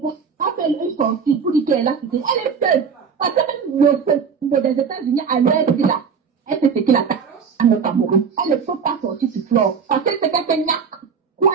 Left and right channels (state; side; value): quieter; left; 6.3 dB